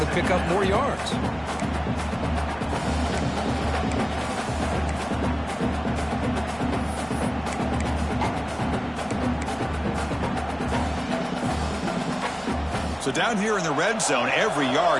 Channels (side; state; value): left; noise; hum, 24 dB below the sound